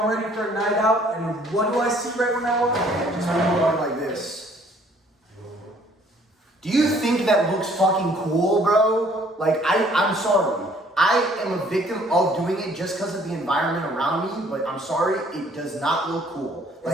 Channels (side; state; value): both; normal; correlation 0.59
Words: ready for a night out, and what do I see right when I walk in? Just going like this. Do you think that looks fucking cool, bro? Like, I'm sorry. I am a victim of doing it just because of the environment around me, but I'm sorry, it does not look cool.